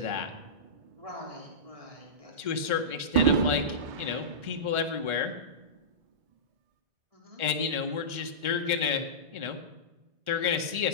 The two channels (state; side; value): late; left; 1.4 ms